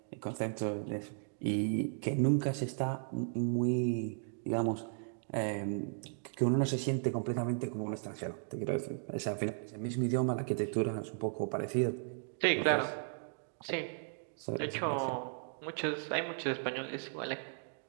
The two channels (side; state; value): left; silent; digital silence